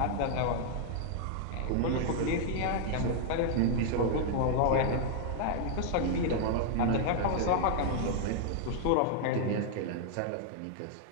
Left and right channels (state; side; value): different; both; correlation -0.01